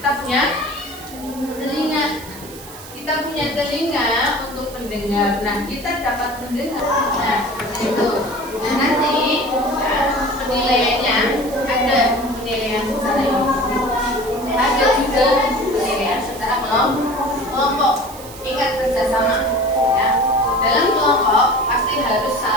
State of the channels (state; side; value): noise; right; hiss, 16 dB below the sound